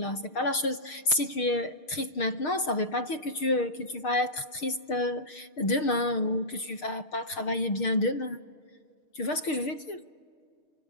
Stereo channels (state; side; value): late; right; 6.5 ms